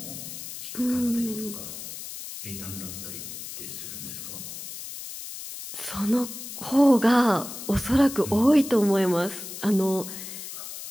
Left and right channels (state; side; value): noise; left; hiss, 10 dB below the sound